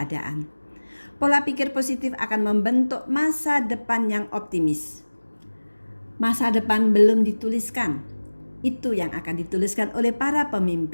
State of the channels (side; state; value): both; inverted; correlation -1.00